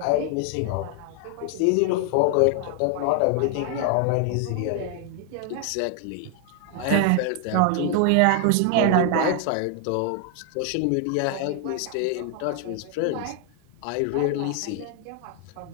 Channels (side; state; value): both; different; correlation 0.00